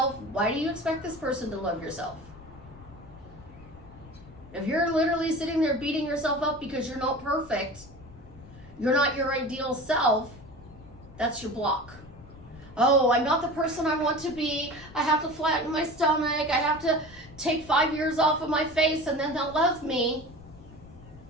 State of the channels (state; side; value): noise; left; rumble, 21 dB below the sound